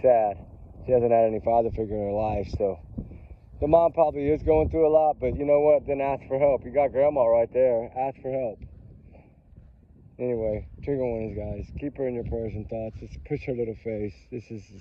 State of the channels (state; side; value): identical; both; correlation 1.00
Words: sad. She hasn't had any father figure in her life, so the mom probably is going through a lot, but you know what? Then ask for help. You got grandma right there. Ask for help. Anyway, trigger warnings, guys. Keep her in your prayers and thoughts. Just push her little face. This is a